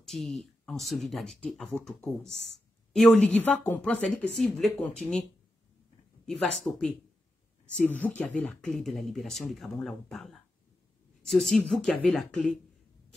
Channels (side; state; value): both; normal; correlation 0.89